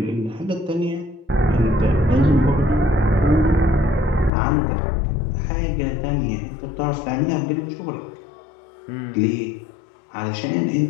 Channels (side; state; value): right; drops out; at 4.3 s